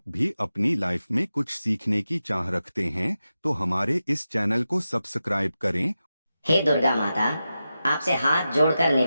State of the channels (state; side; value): inverted; both; correlation -0.92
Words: भी अपनी लाइफ में कुछ सीखने की चाह रखते हैं तो हमारे इस चैनल को सब्सक्राइब करें। हे दुर्गा माता, आपसे हाथ जोड़कर